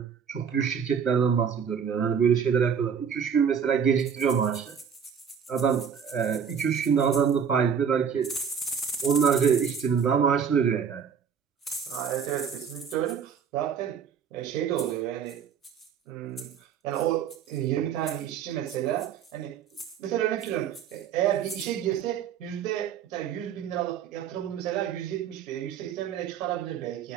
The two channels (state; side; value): quieter; left; 7.4 dB